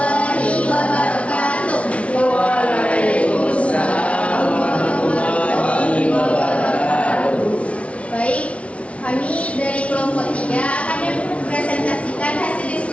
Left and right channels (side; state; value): right; late; 0.063 ms